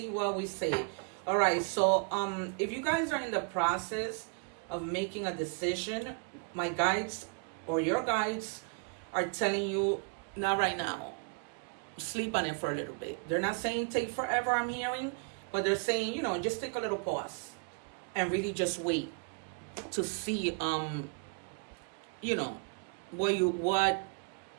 what we say. All right, so if you guys are in the process of making a decision, my guides or your guides are telling you, not right now. Sleep on it for a little bit. They're not saying take forever, I'm hearing, but they're saying, you know, just take a little pause and really just wait to see, you know,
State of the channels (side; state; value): left; quieter; 38.1 dB